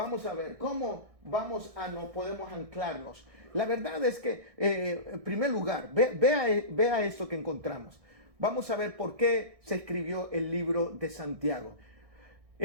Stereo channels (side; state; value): left; late; 1.6 ms